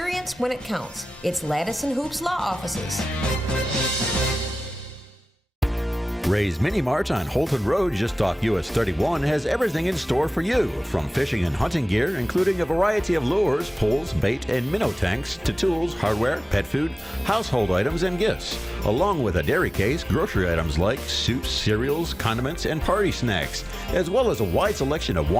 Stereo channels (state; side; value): normal; both; correlation 0.97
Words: when it counts. It's Lattis & Hoops Law Offices. Ray's Mini Mart on Holton Road, just off US 31, has everything in store for you, from fishing and hunting gear, including a variety of lures, poles, bait, and minnow tanks, to tools, hardware, pet food, household items, and gifts, along with a dairy case, grocery items like soups, cereals, condiments, and party snacks, as well as a wide selection of